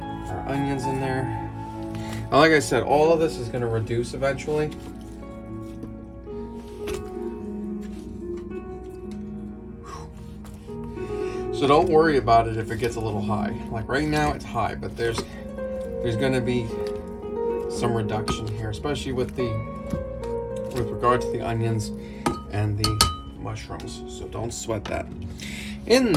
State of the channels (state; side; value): identical; both; correlation 1.00